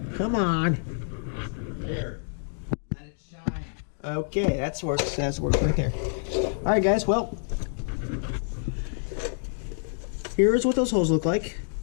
Come on. Here. Let it shine. Okay, that's works. That's works right there. Alright guys, well. Here's what those holes look like.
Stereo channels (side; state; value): right; silent; digital silence